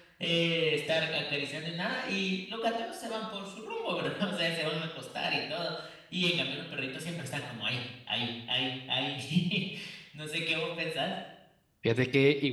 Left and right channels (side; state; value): both; identical; correlation 1.00